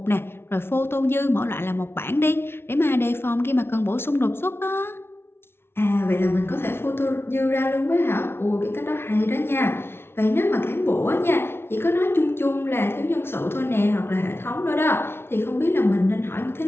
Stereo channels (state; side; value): late; right; 0.12 ms